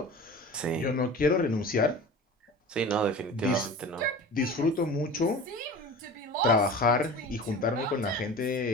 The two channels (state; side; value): normal; both; correlation 0.37